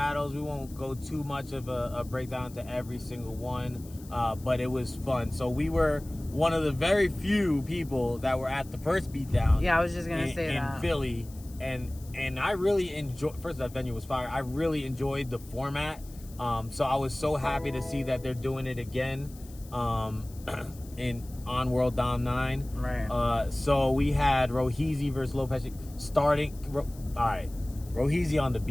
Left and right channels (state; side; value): noise; left; hiss, 22 dB below the sound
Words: We won't go too much of a breakdown to every single one, but it was fun. So we were one of the very few people that were at the first beatdown. Yeah, I was just gonna say that. In Philly, and I really enjoyed. First, that venue was fire. I really enjoyed the format. So I was so happy to see that they're doing it again on World Dom 9. Right. So we had Roheezy versus Lopez starting. All right. Roheezy on the